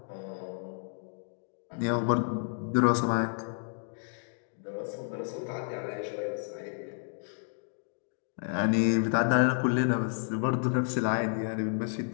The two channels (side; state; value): right; silent; 57 dB below the other